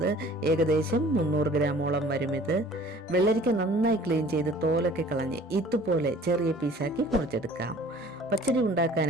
ഏകദേശം 300 ഗ്രാമോളം വരും ഇത്. വെള്ളരിക്ക നന്നായി ക്ലീൻ ചെയ്ത് തോലൊക്കെ കളഞ്ഞ് ഇതുപോലെ ചെറിയ പീസാക്കി മുറിച്ചെടുക്കാം. പച്ചടി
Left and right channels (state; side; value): normal; both; correlation 0.50